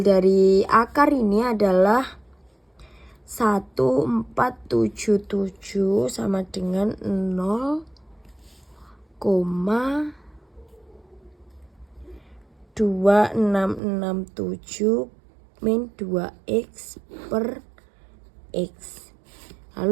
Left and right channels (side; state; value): left; drops out; at 13.8 s